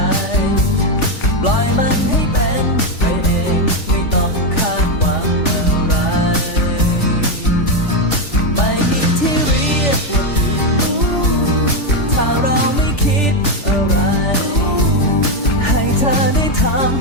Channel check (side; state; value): right; late; 3.4 ms